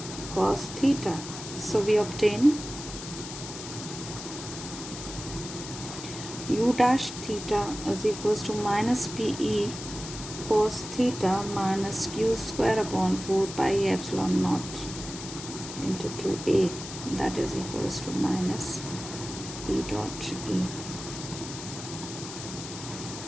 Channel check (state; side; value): noise; left; hiss, 10 dB below the sound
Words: cos theta. So we obtain U dash theta is equals to minus PE cos theta minus Q square upon 4 pi epsilon naught into 2A, that is equals to minus P dot E.